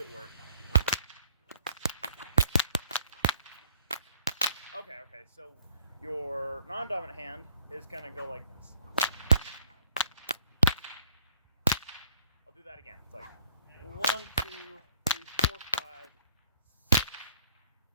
work? Okay. So your non-dominant hand is going to go like this. I'll do that again. It's like 1, 2, 3, 4, 5, 6.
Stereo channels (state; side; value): inverted; both; correlation -0.61